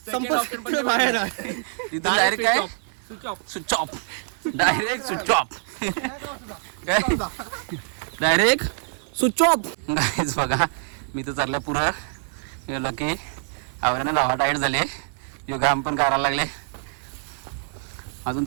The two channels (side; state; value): left; silent; 57 dB below the other